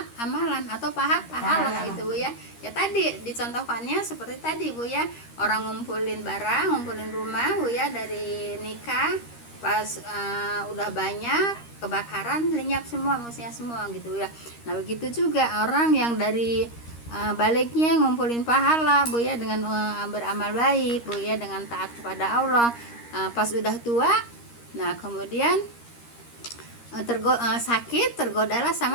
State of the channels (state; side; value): late; right; 13 ms